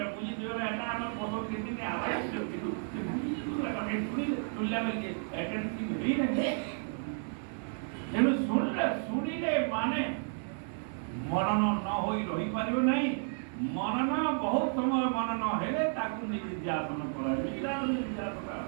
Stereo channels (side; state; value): left; silent; 56 dB below the other